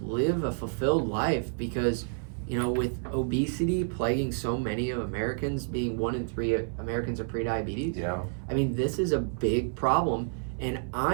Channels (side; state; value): left; silent; 58 dB below the other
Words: live a fulfilled life because, with obesity plaguing so many of Americans, being 1 in 3 Americans are prediabetes. Yeah. I mean, this is a big problem, and